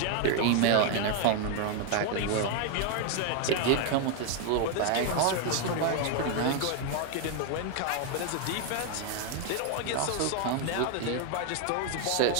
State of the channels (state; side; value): different; both; correlation 0.01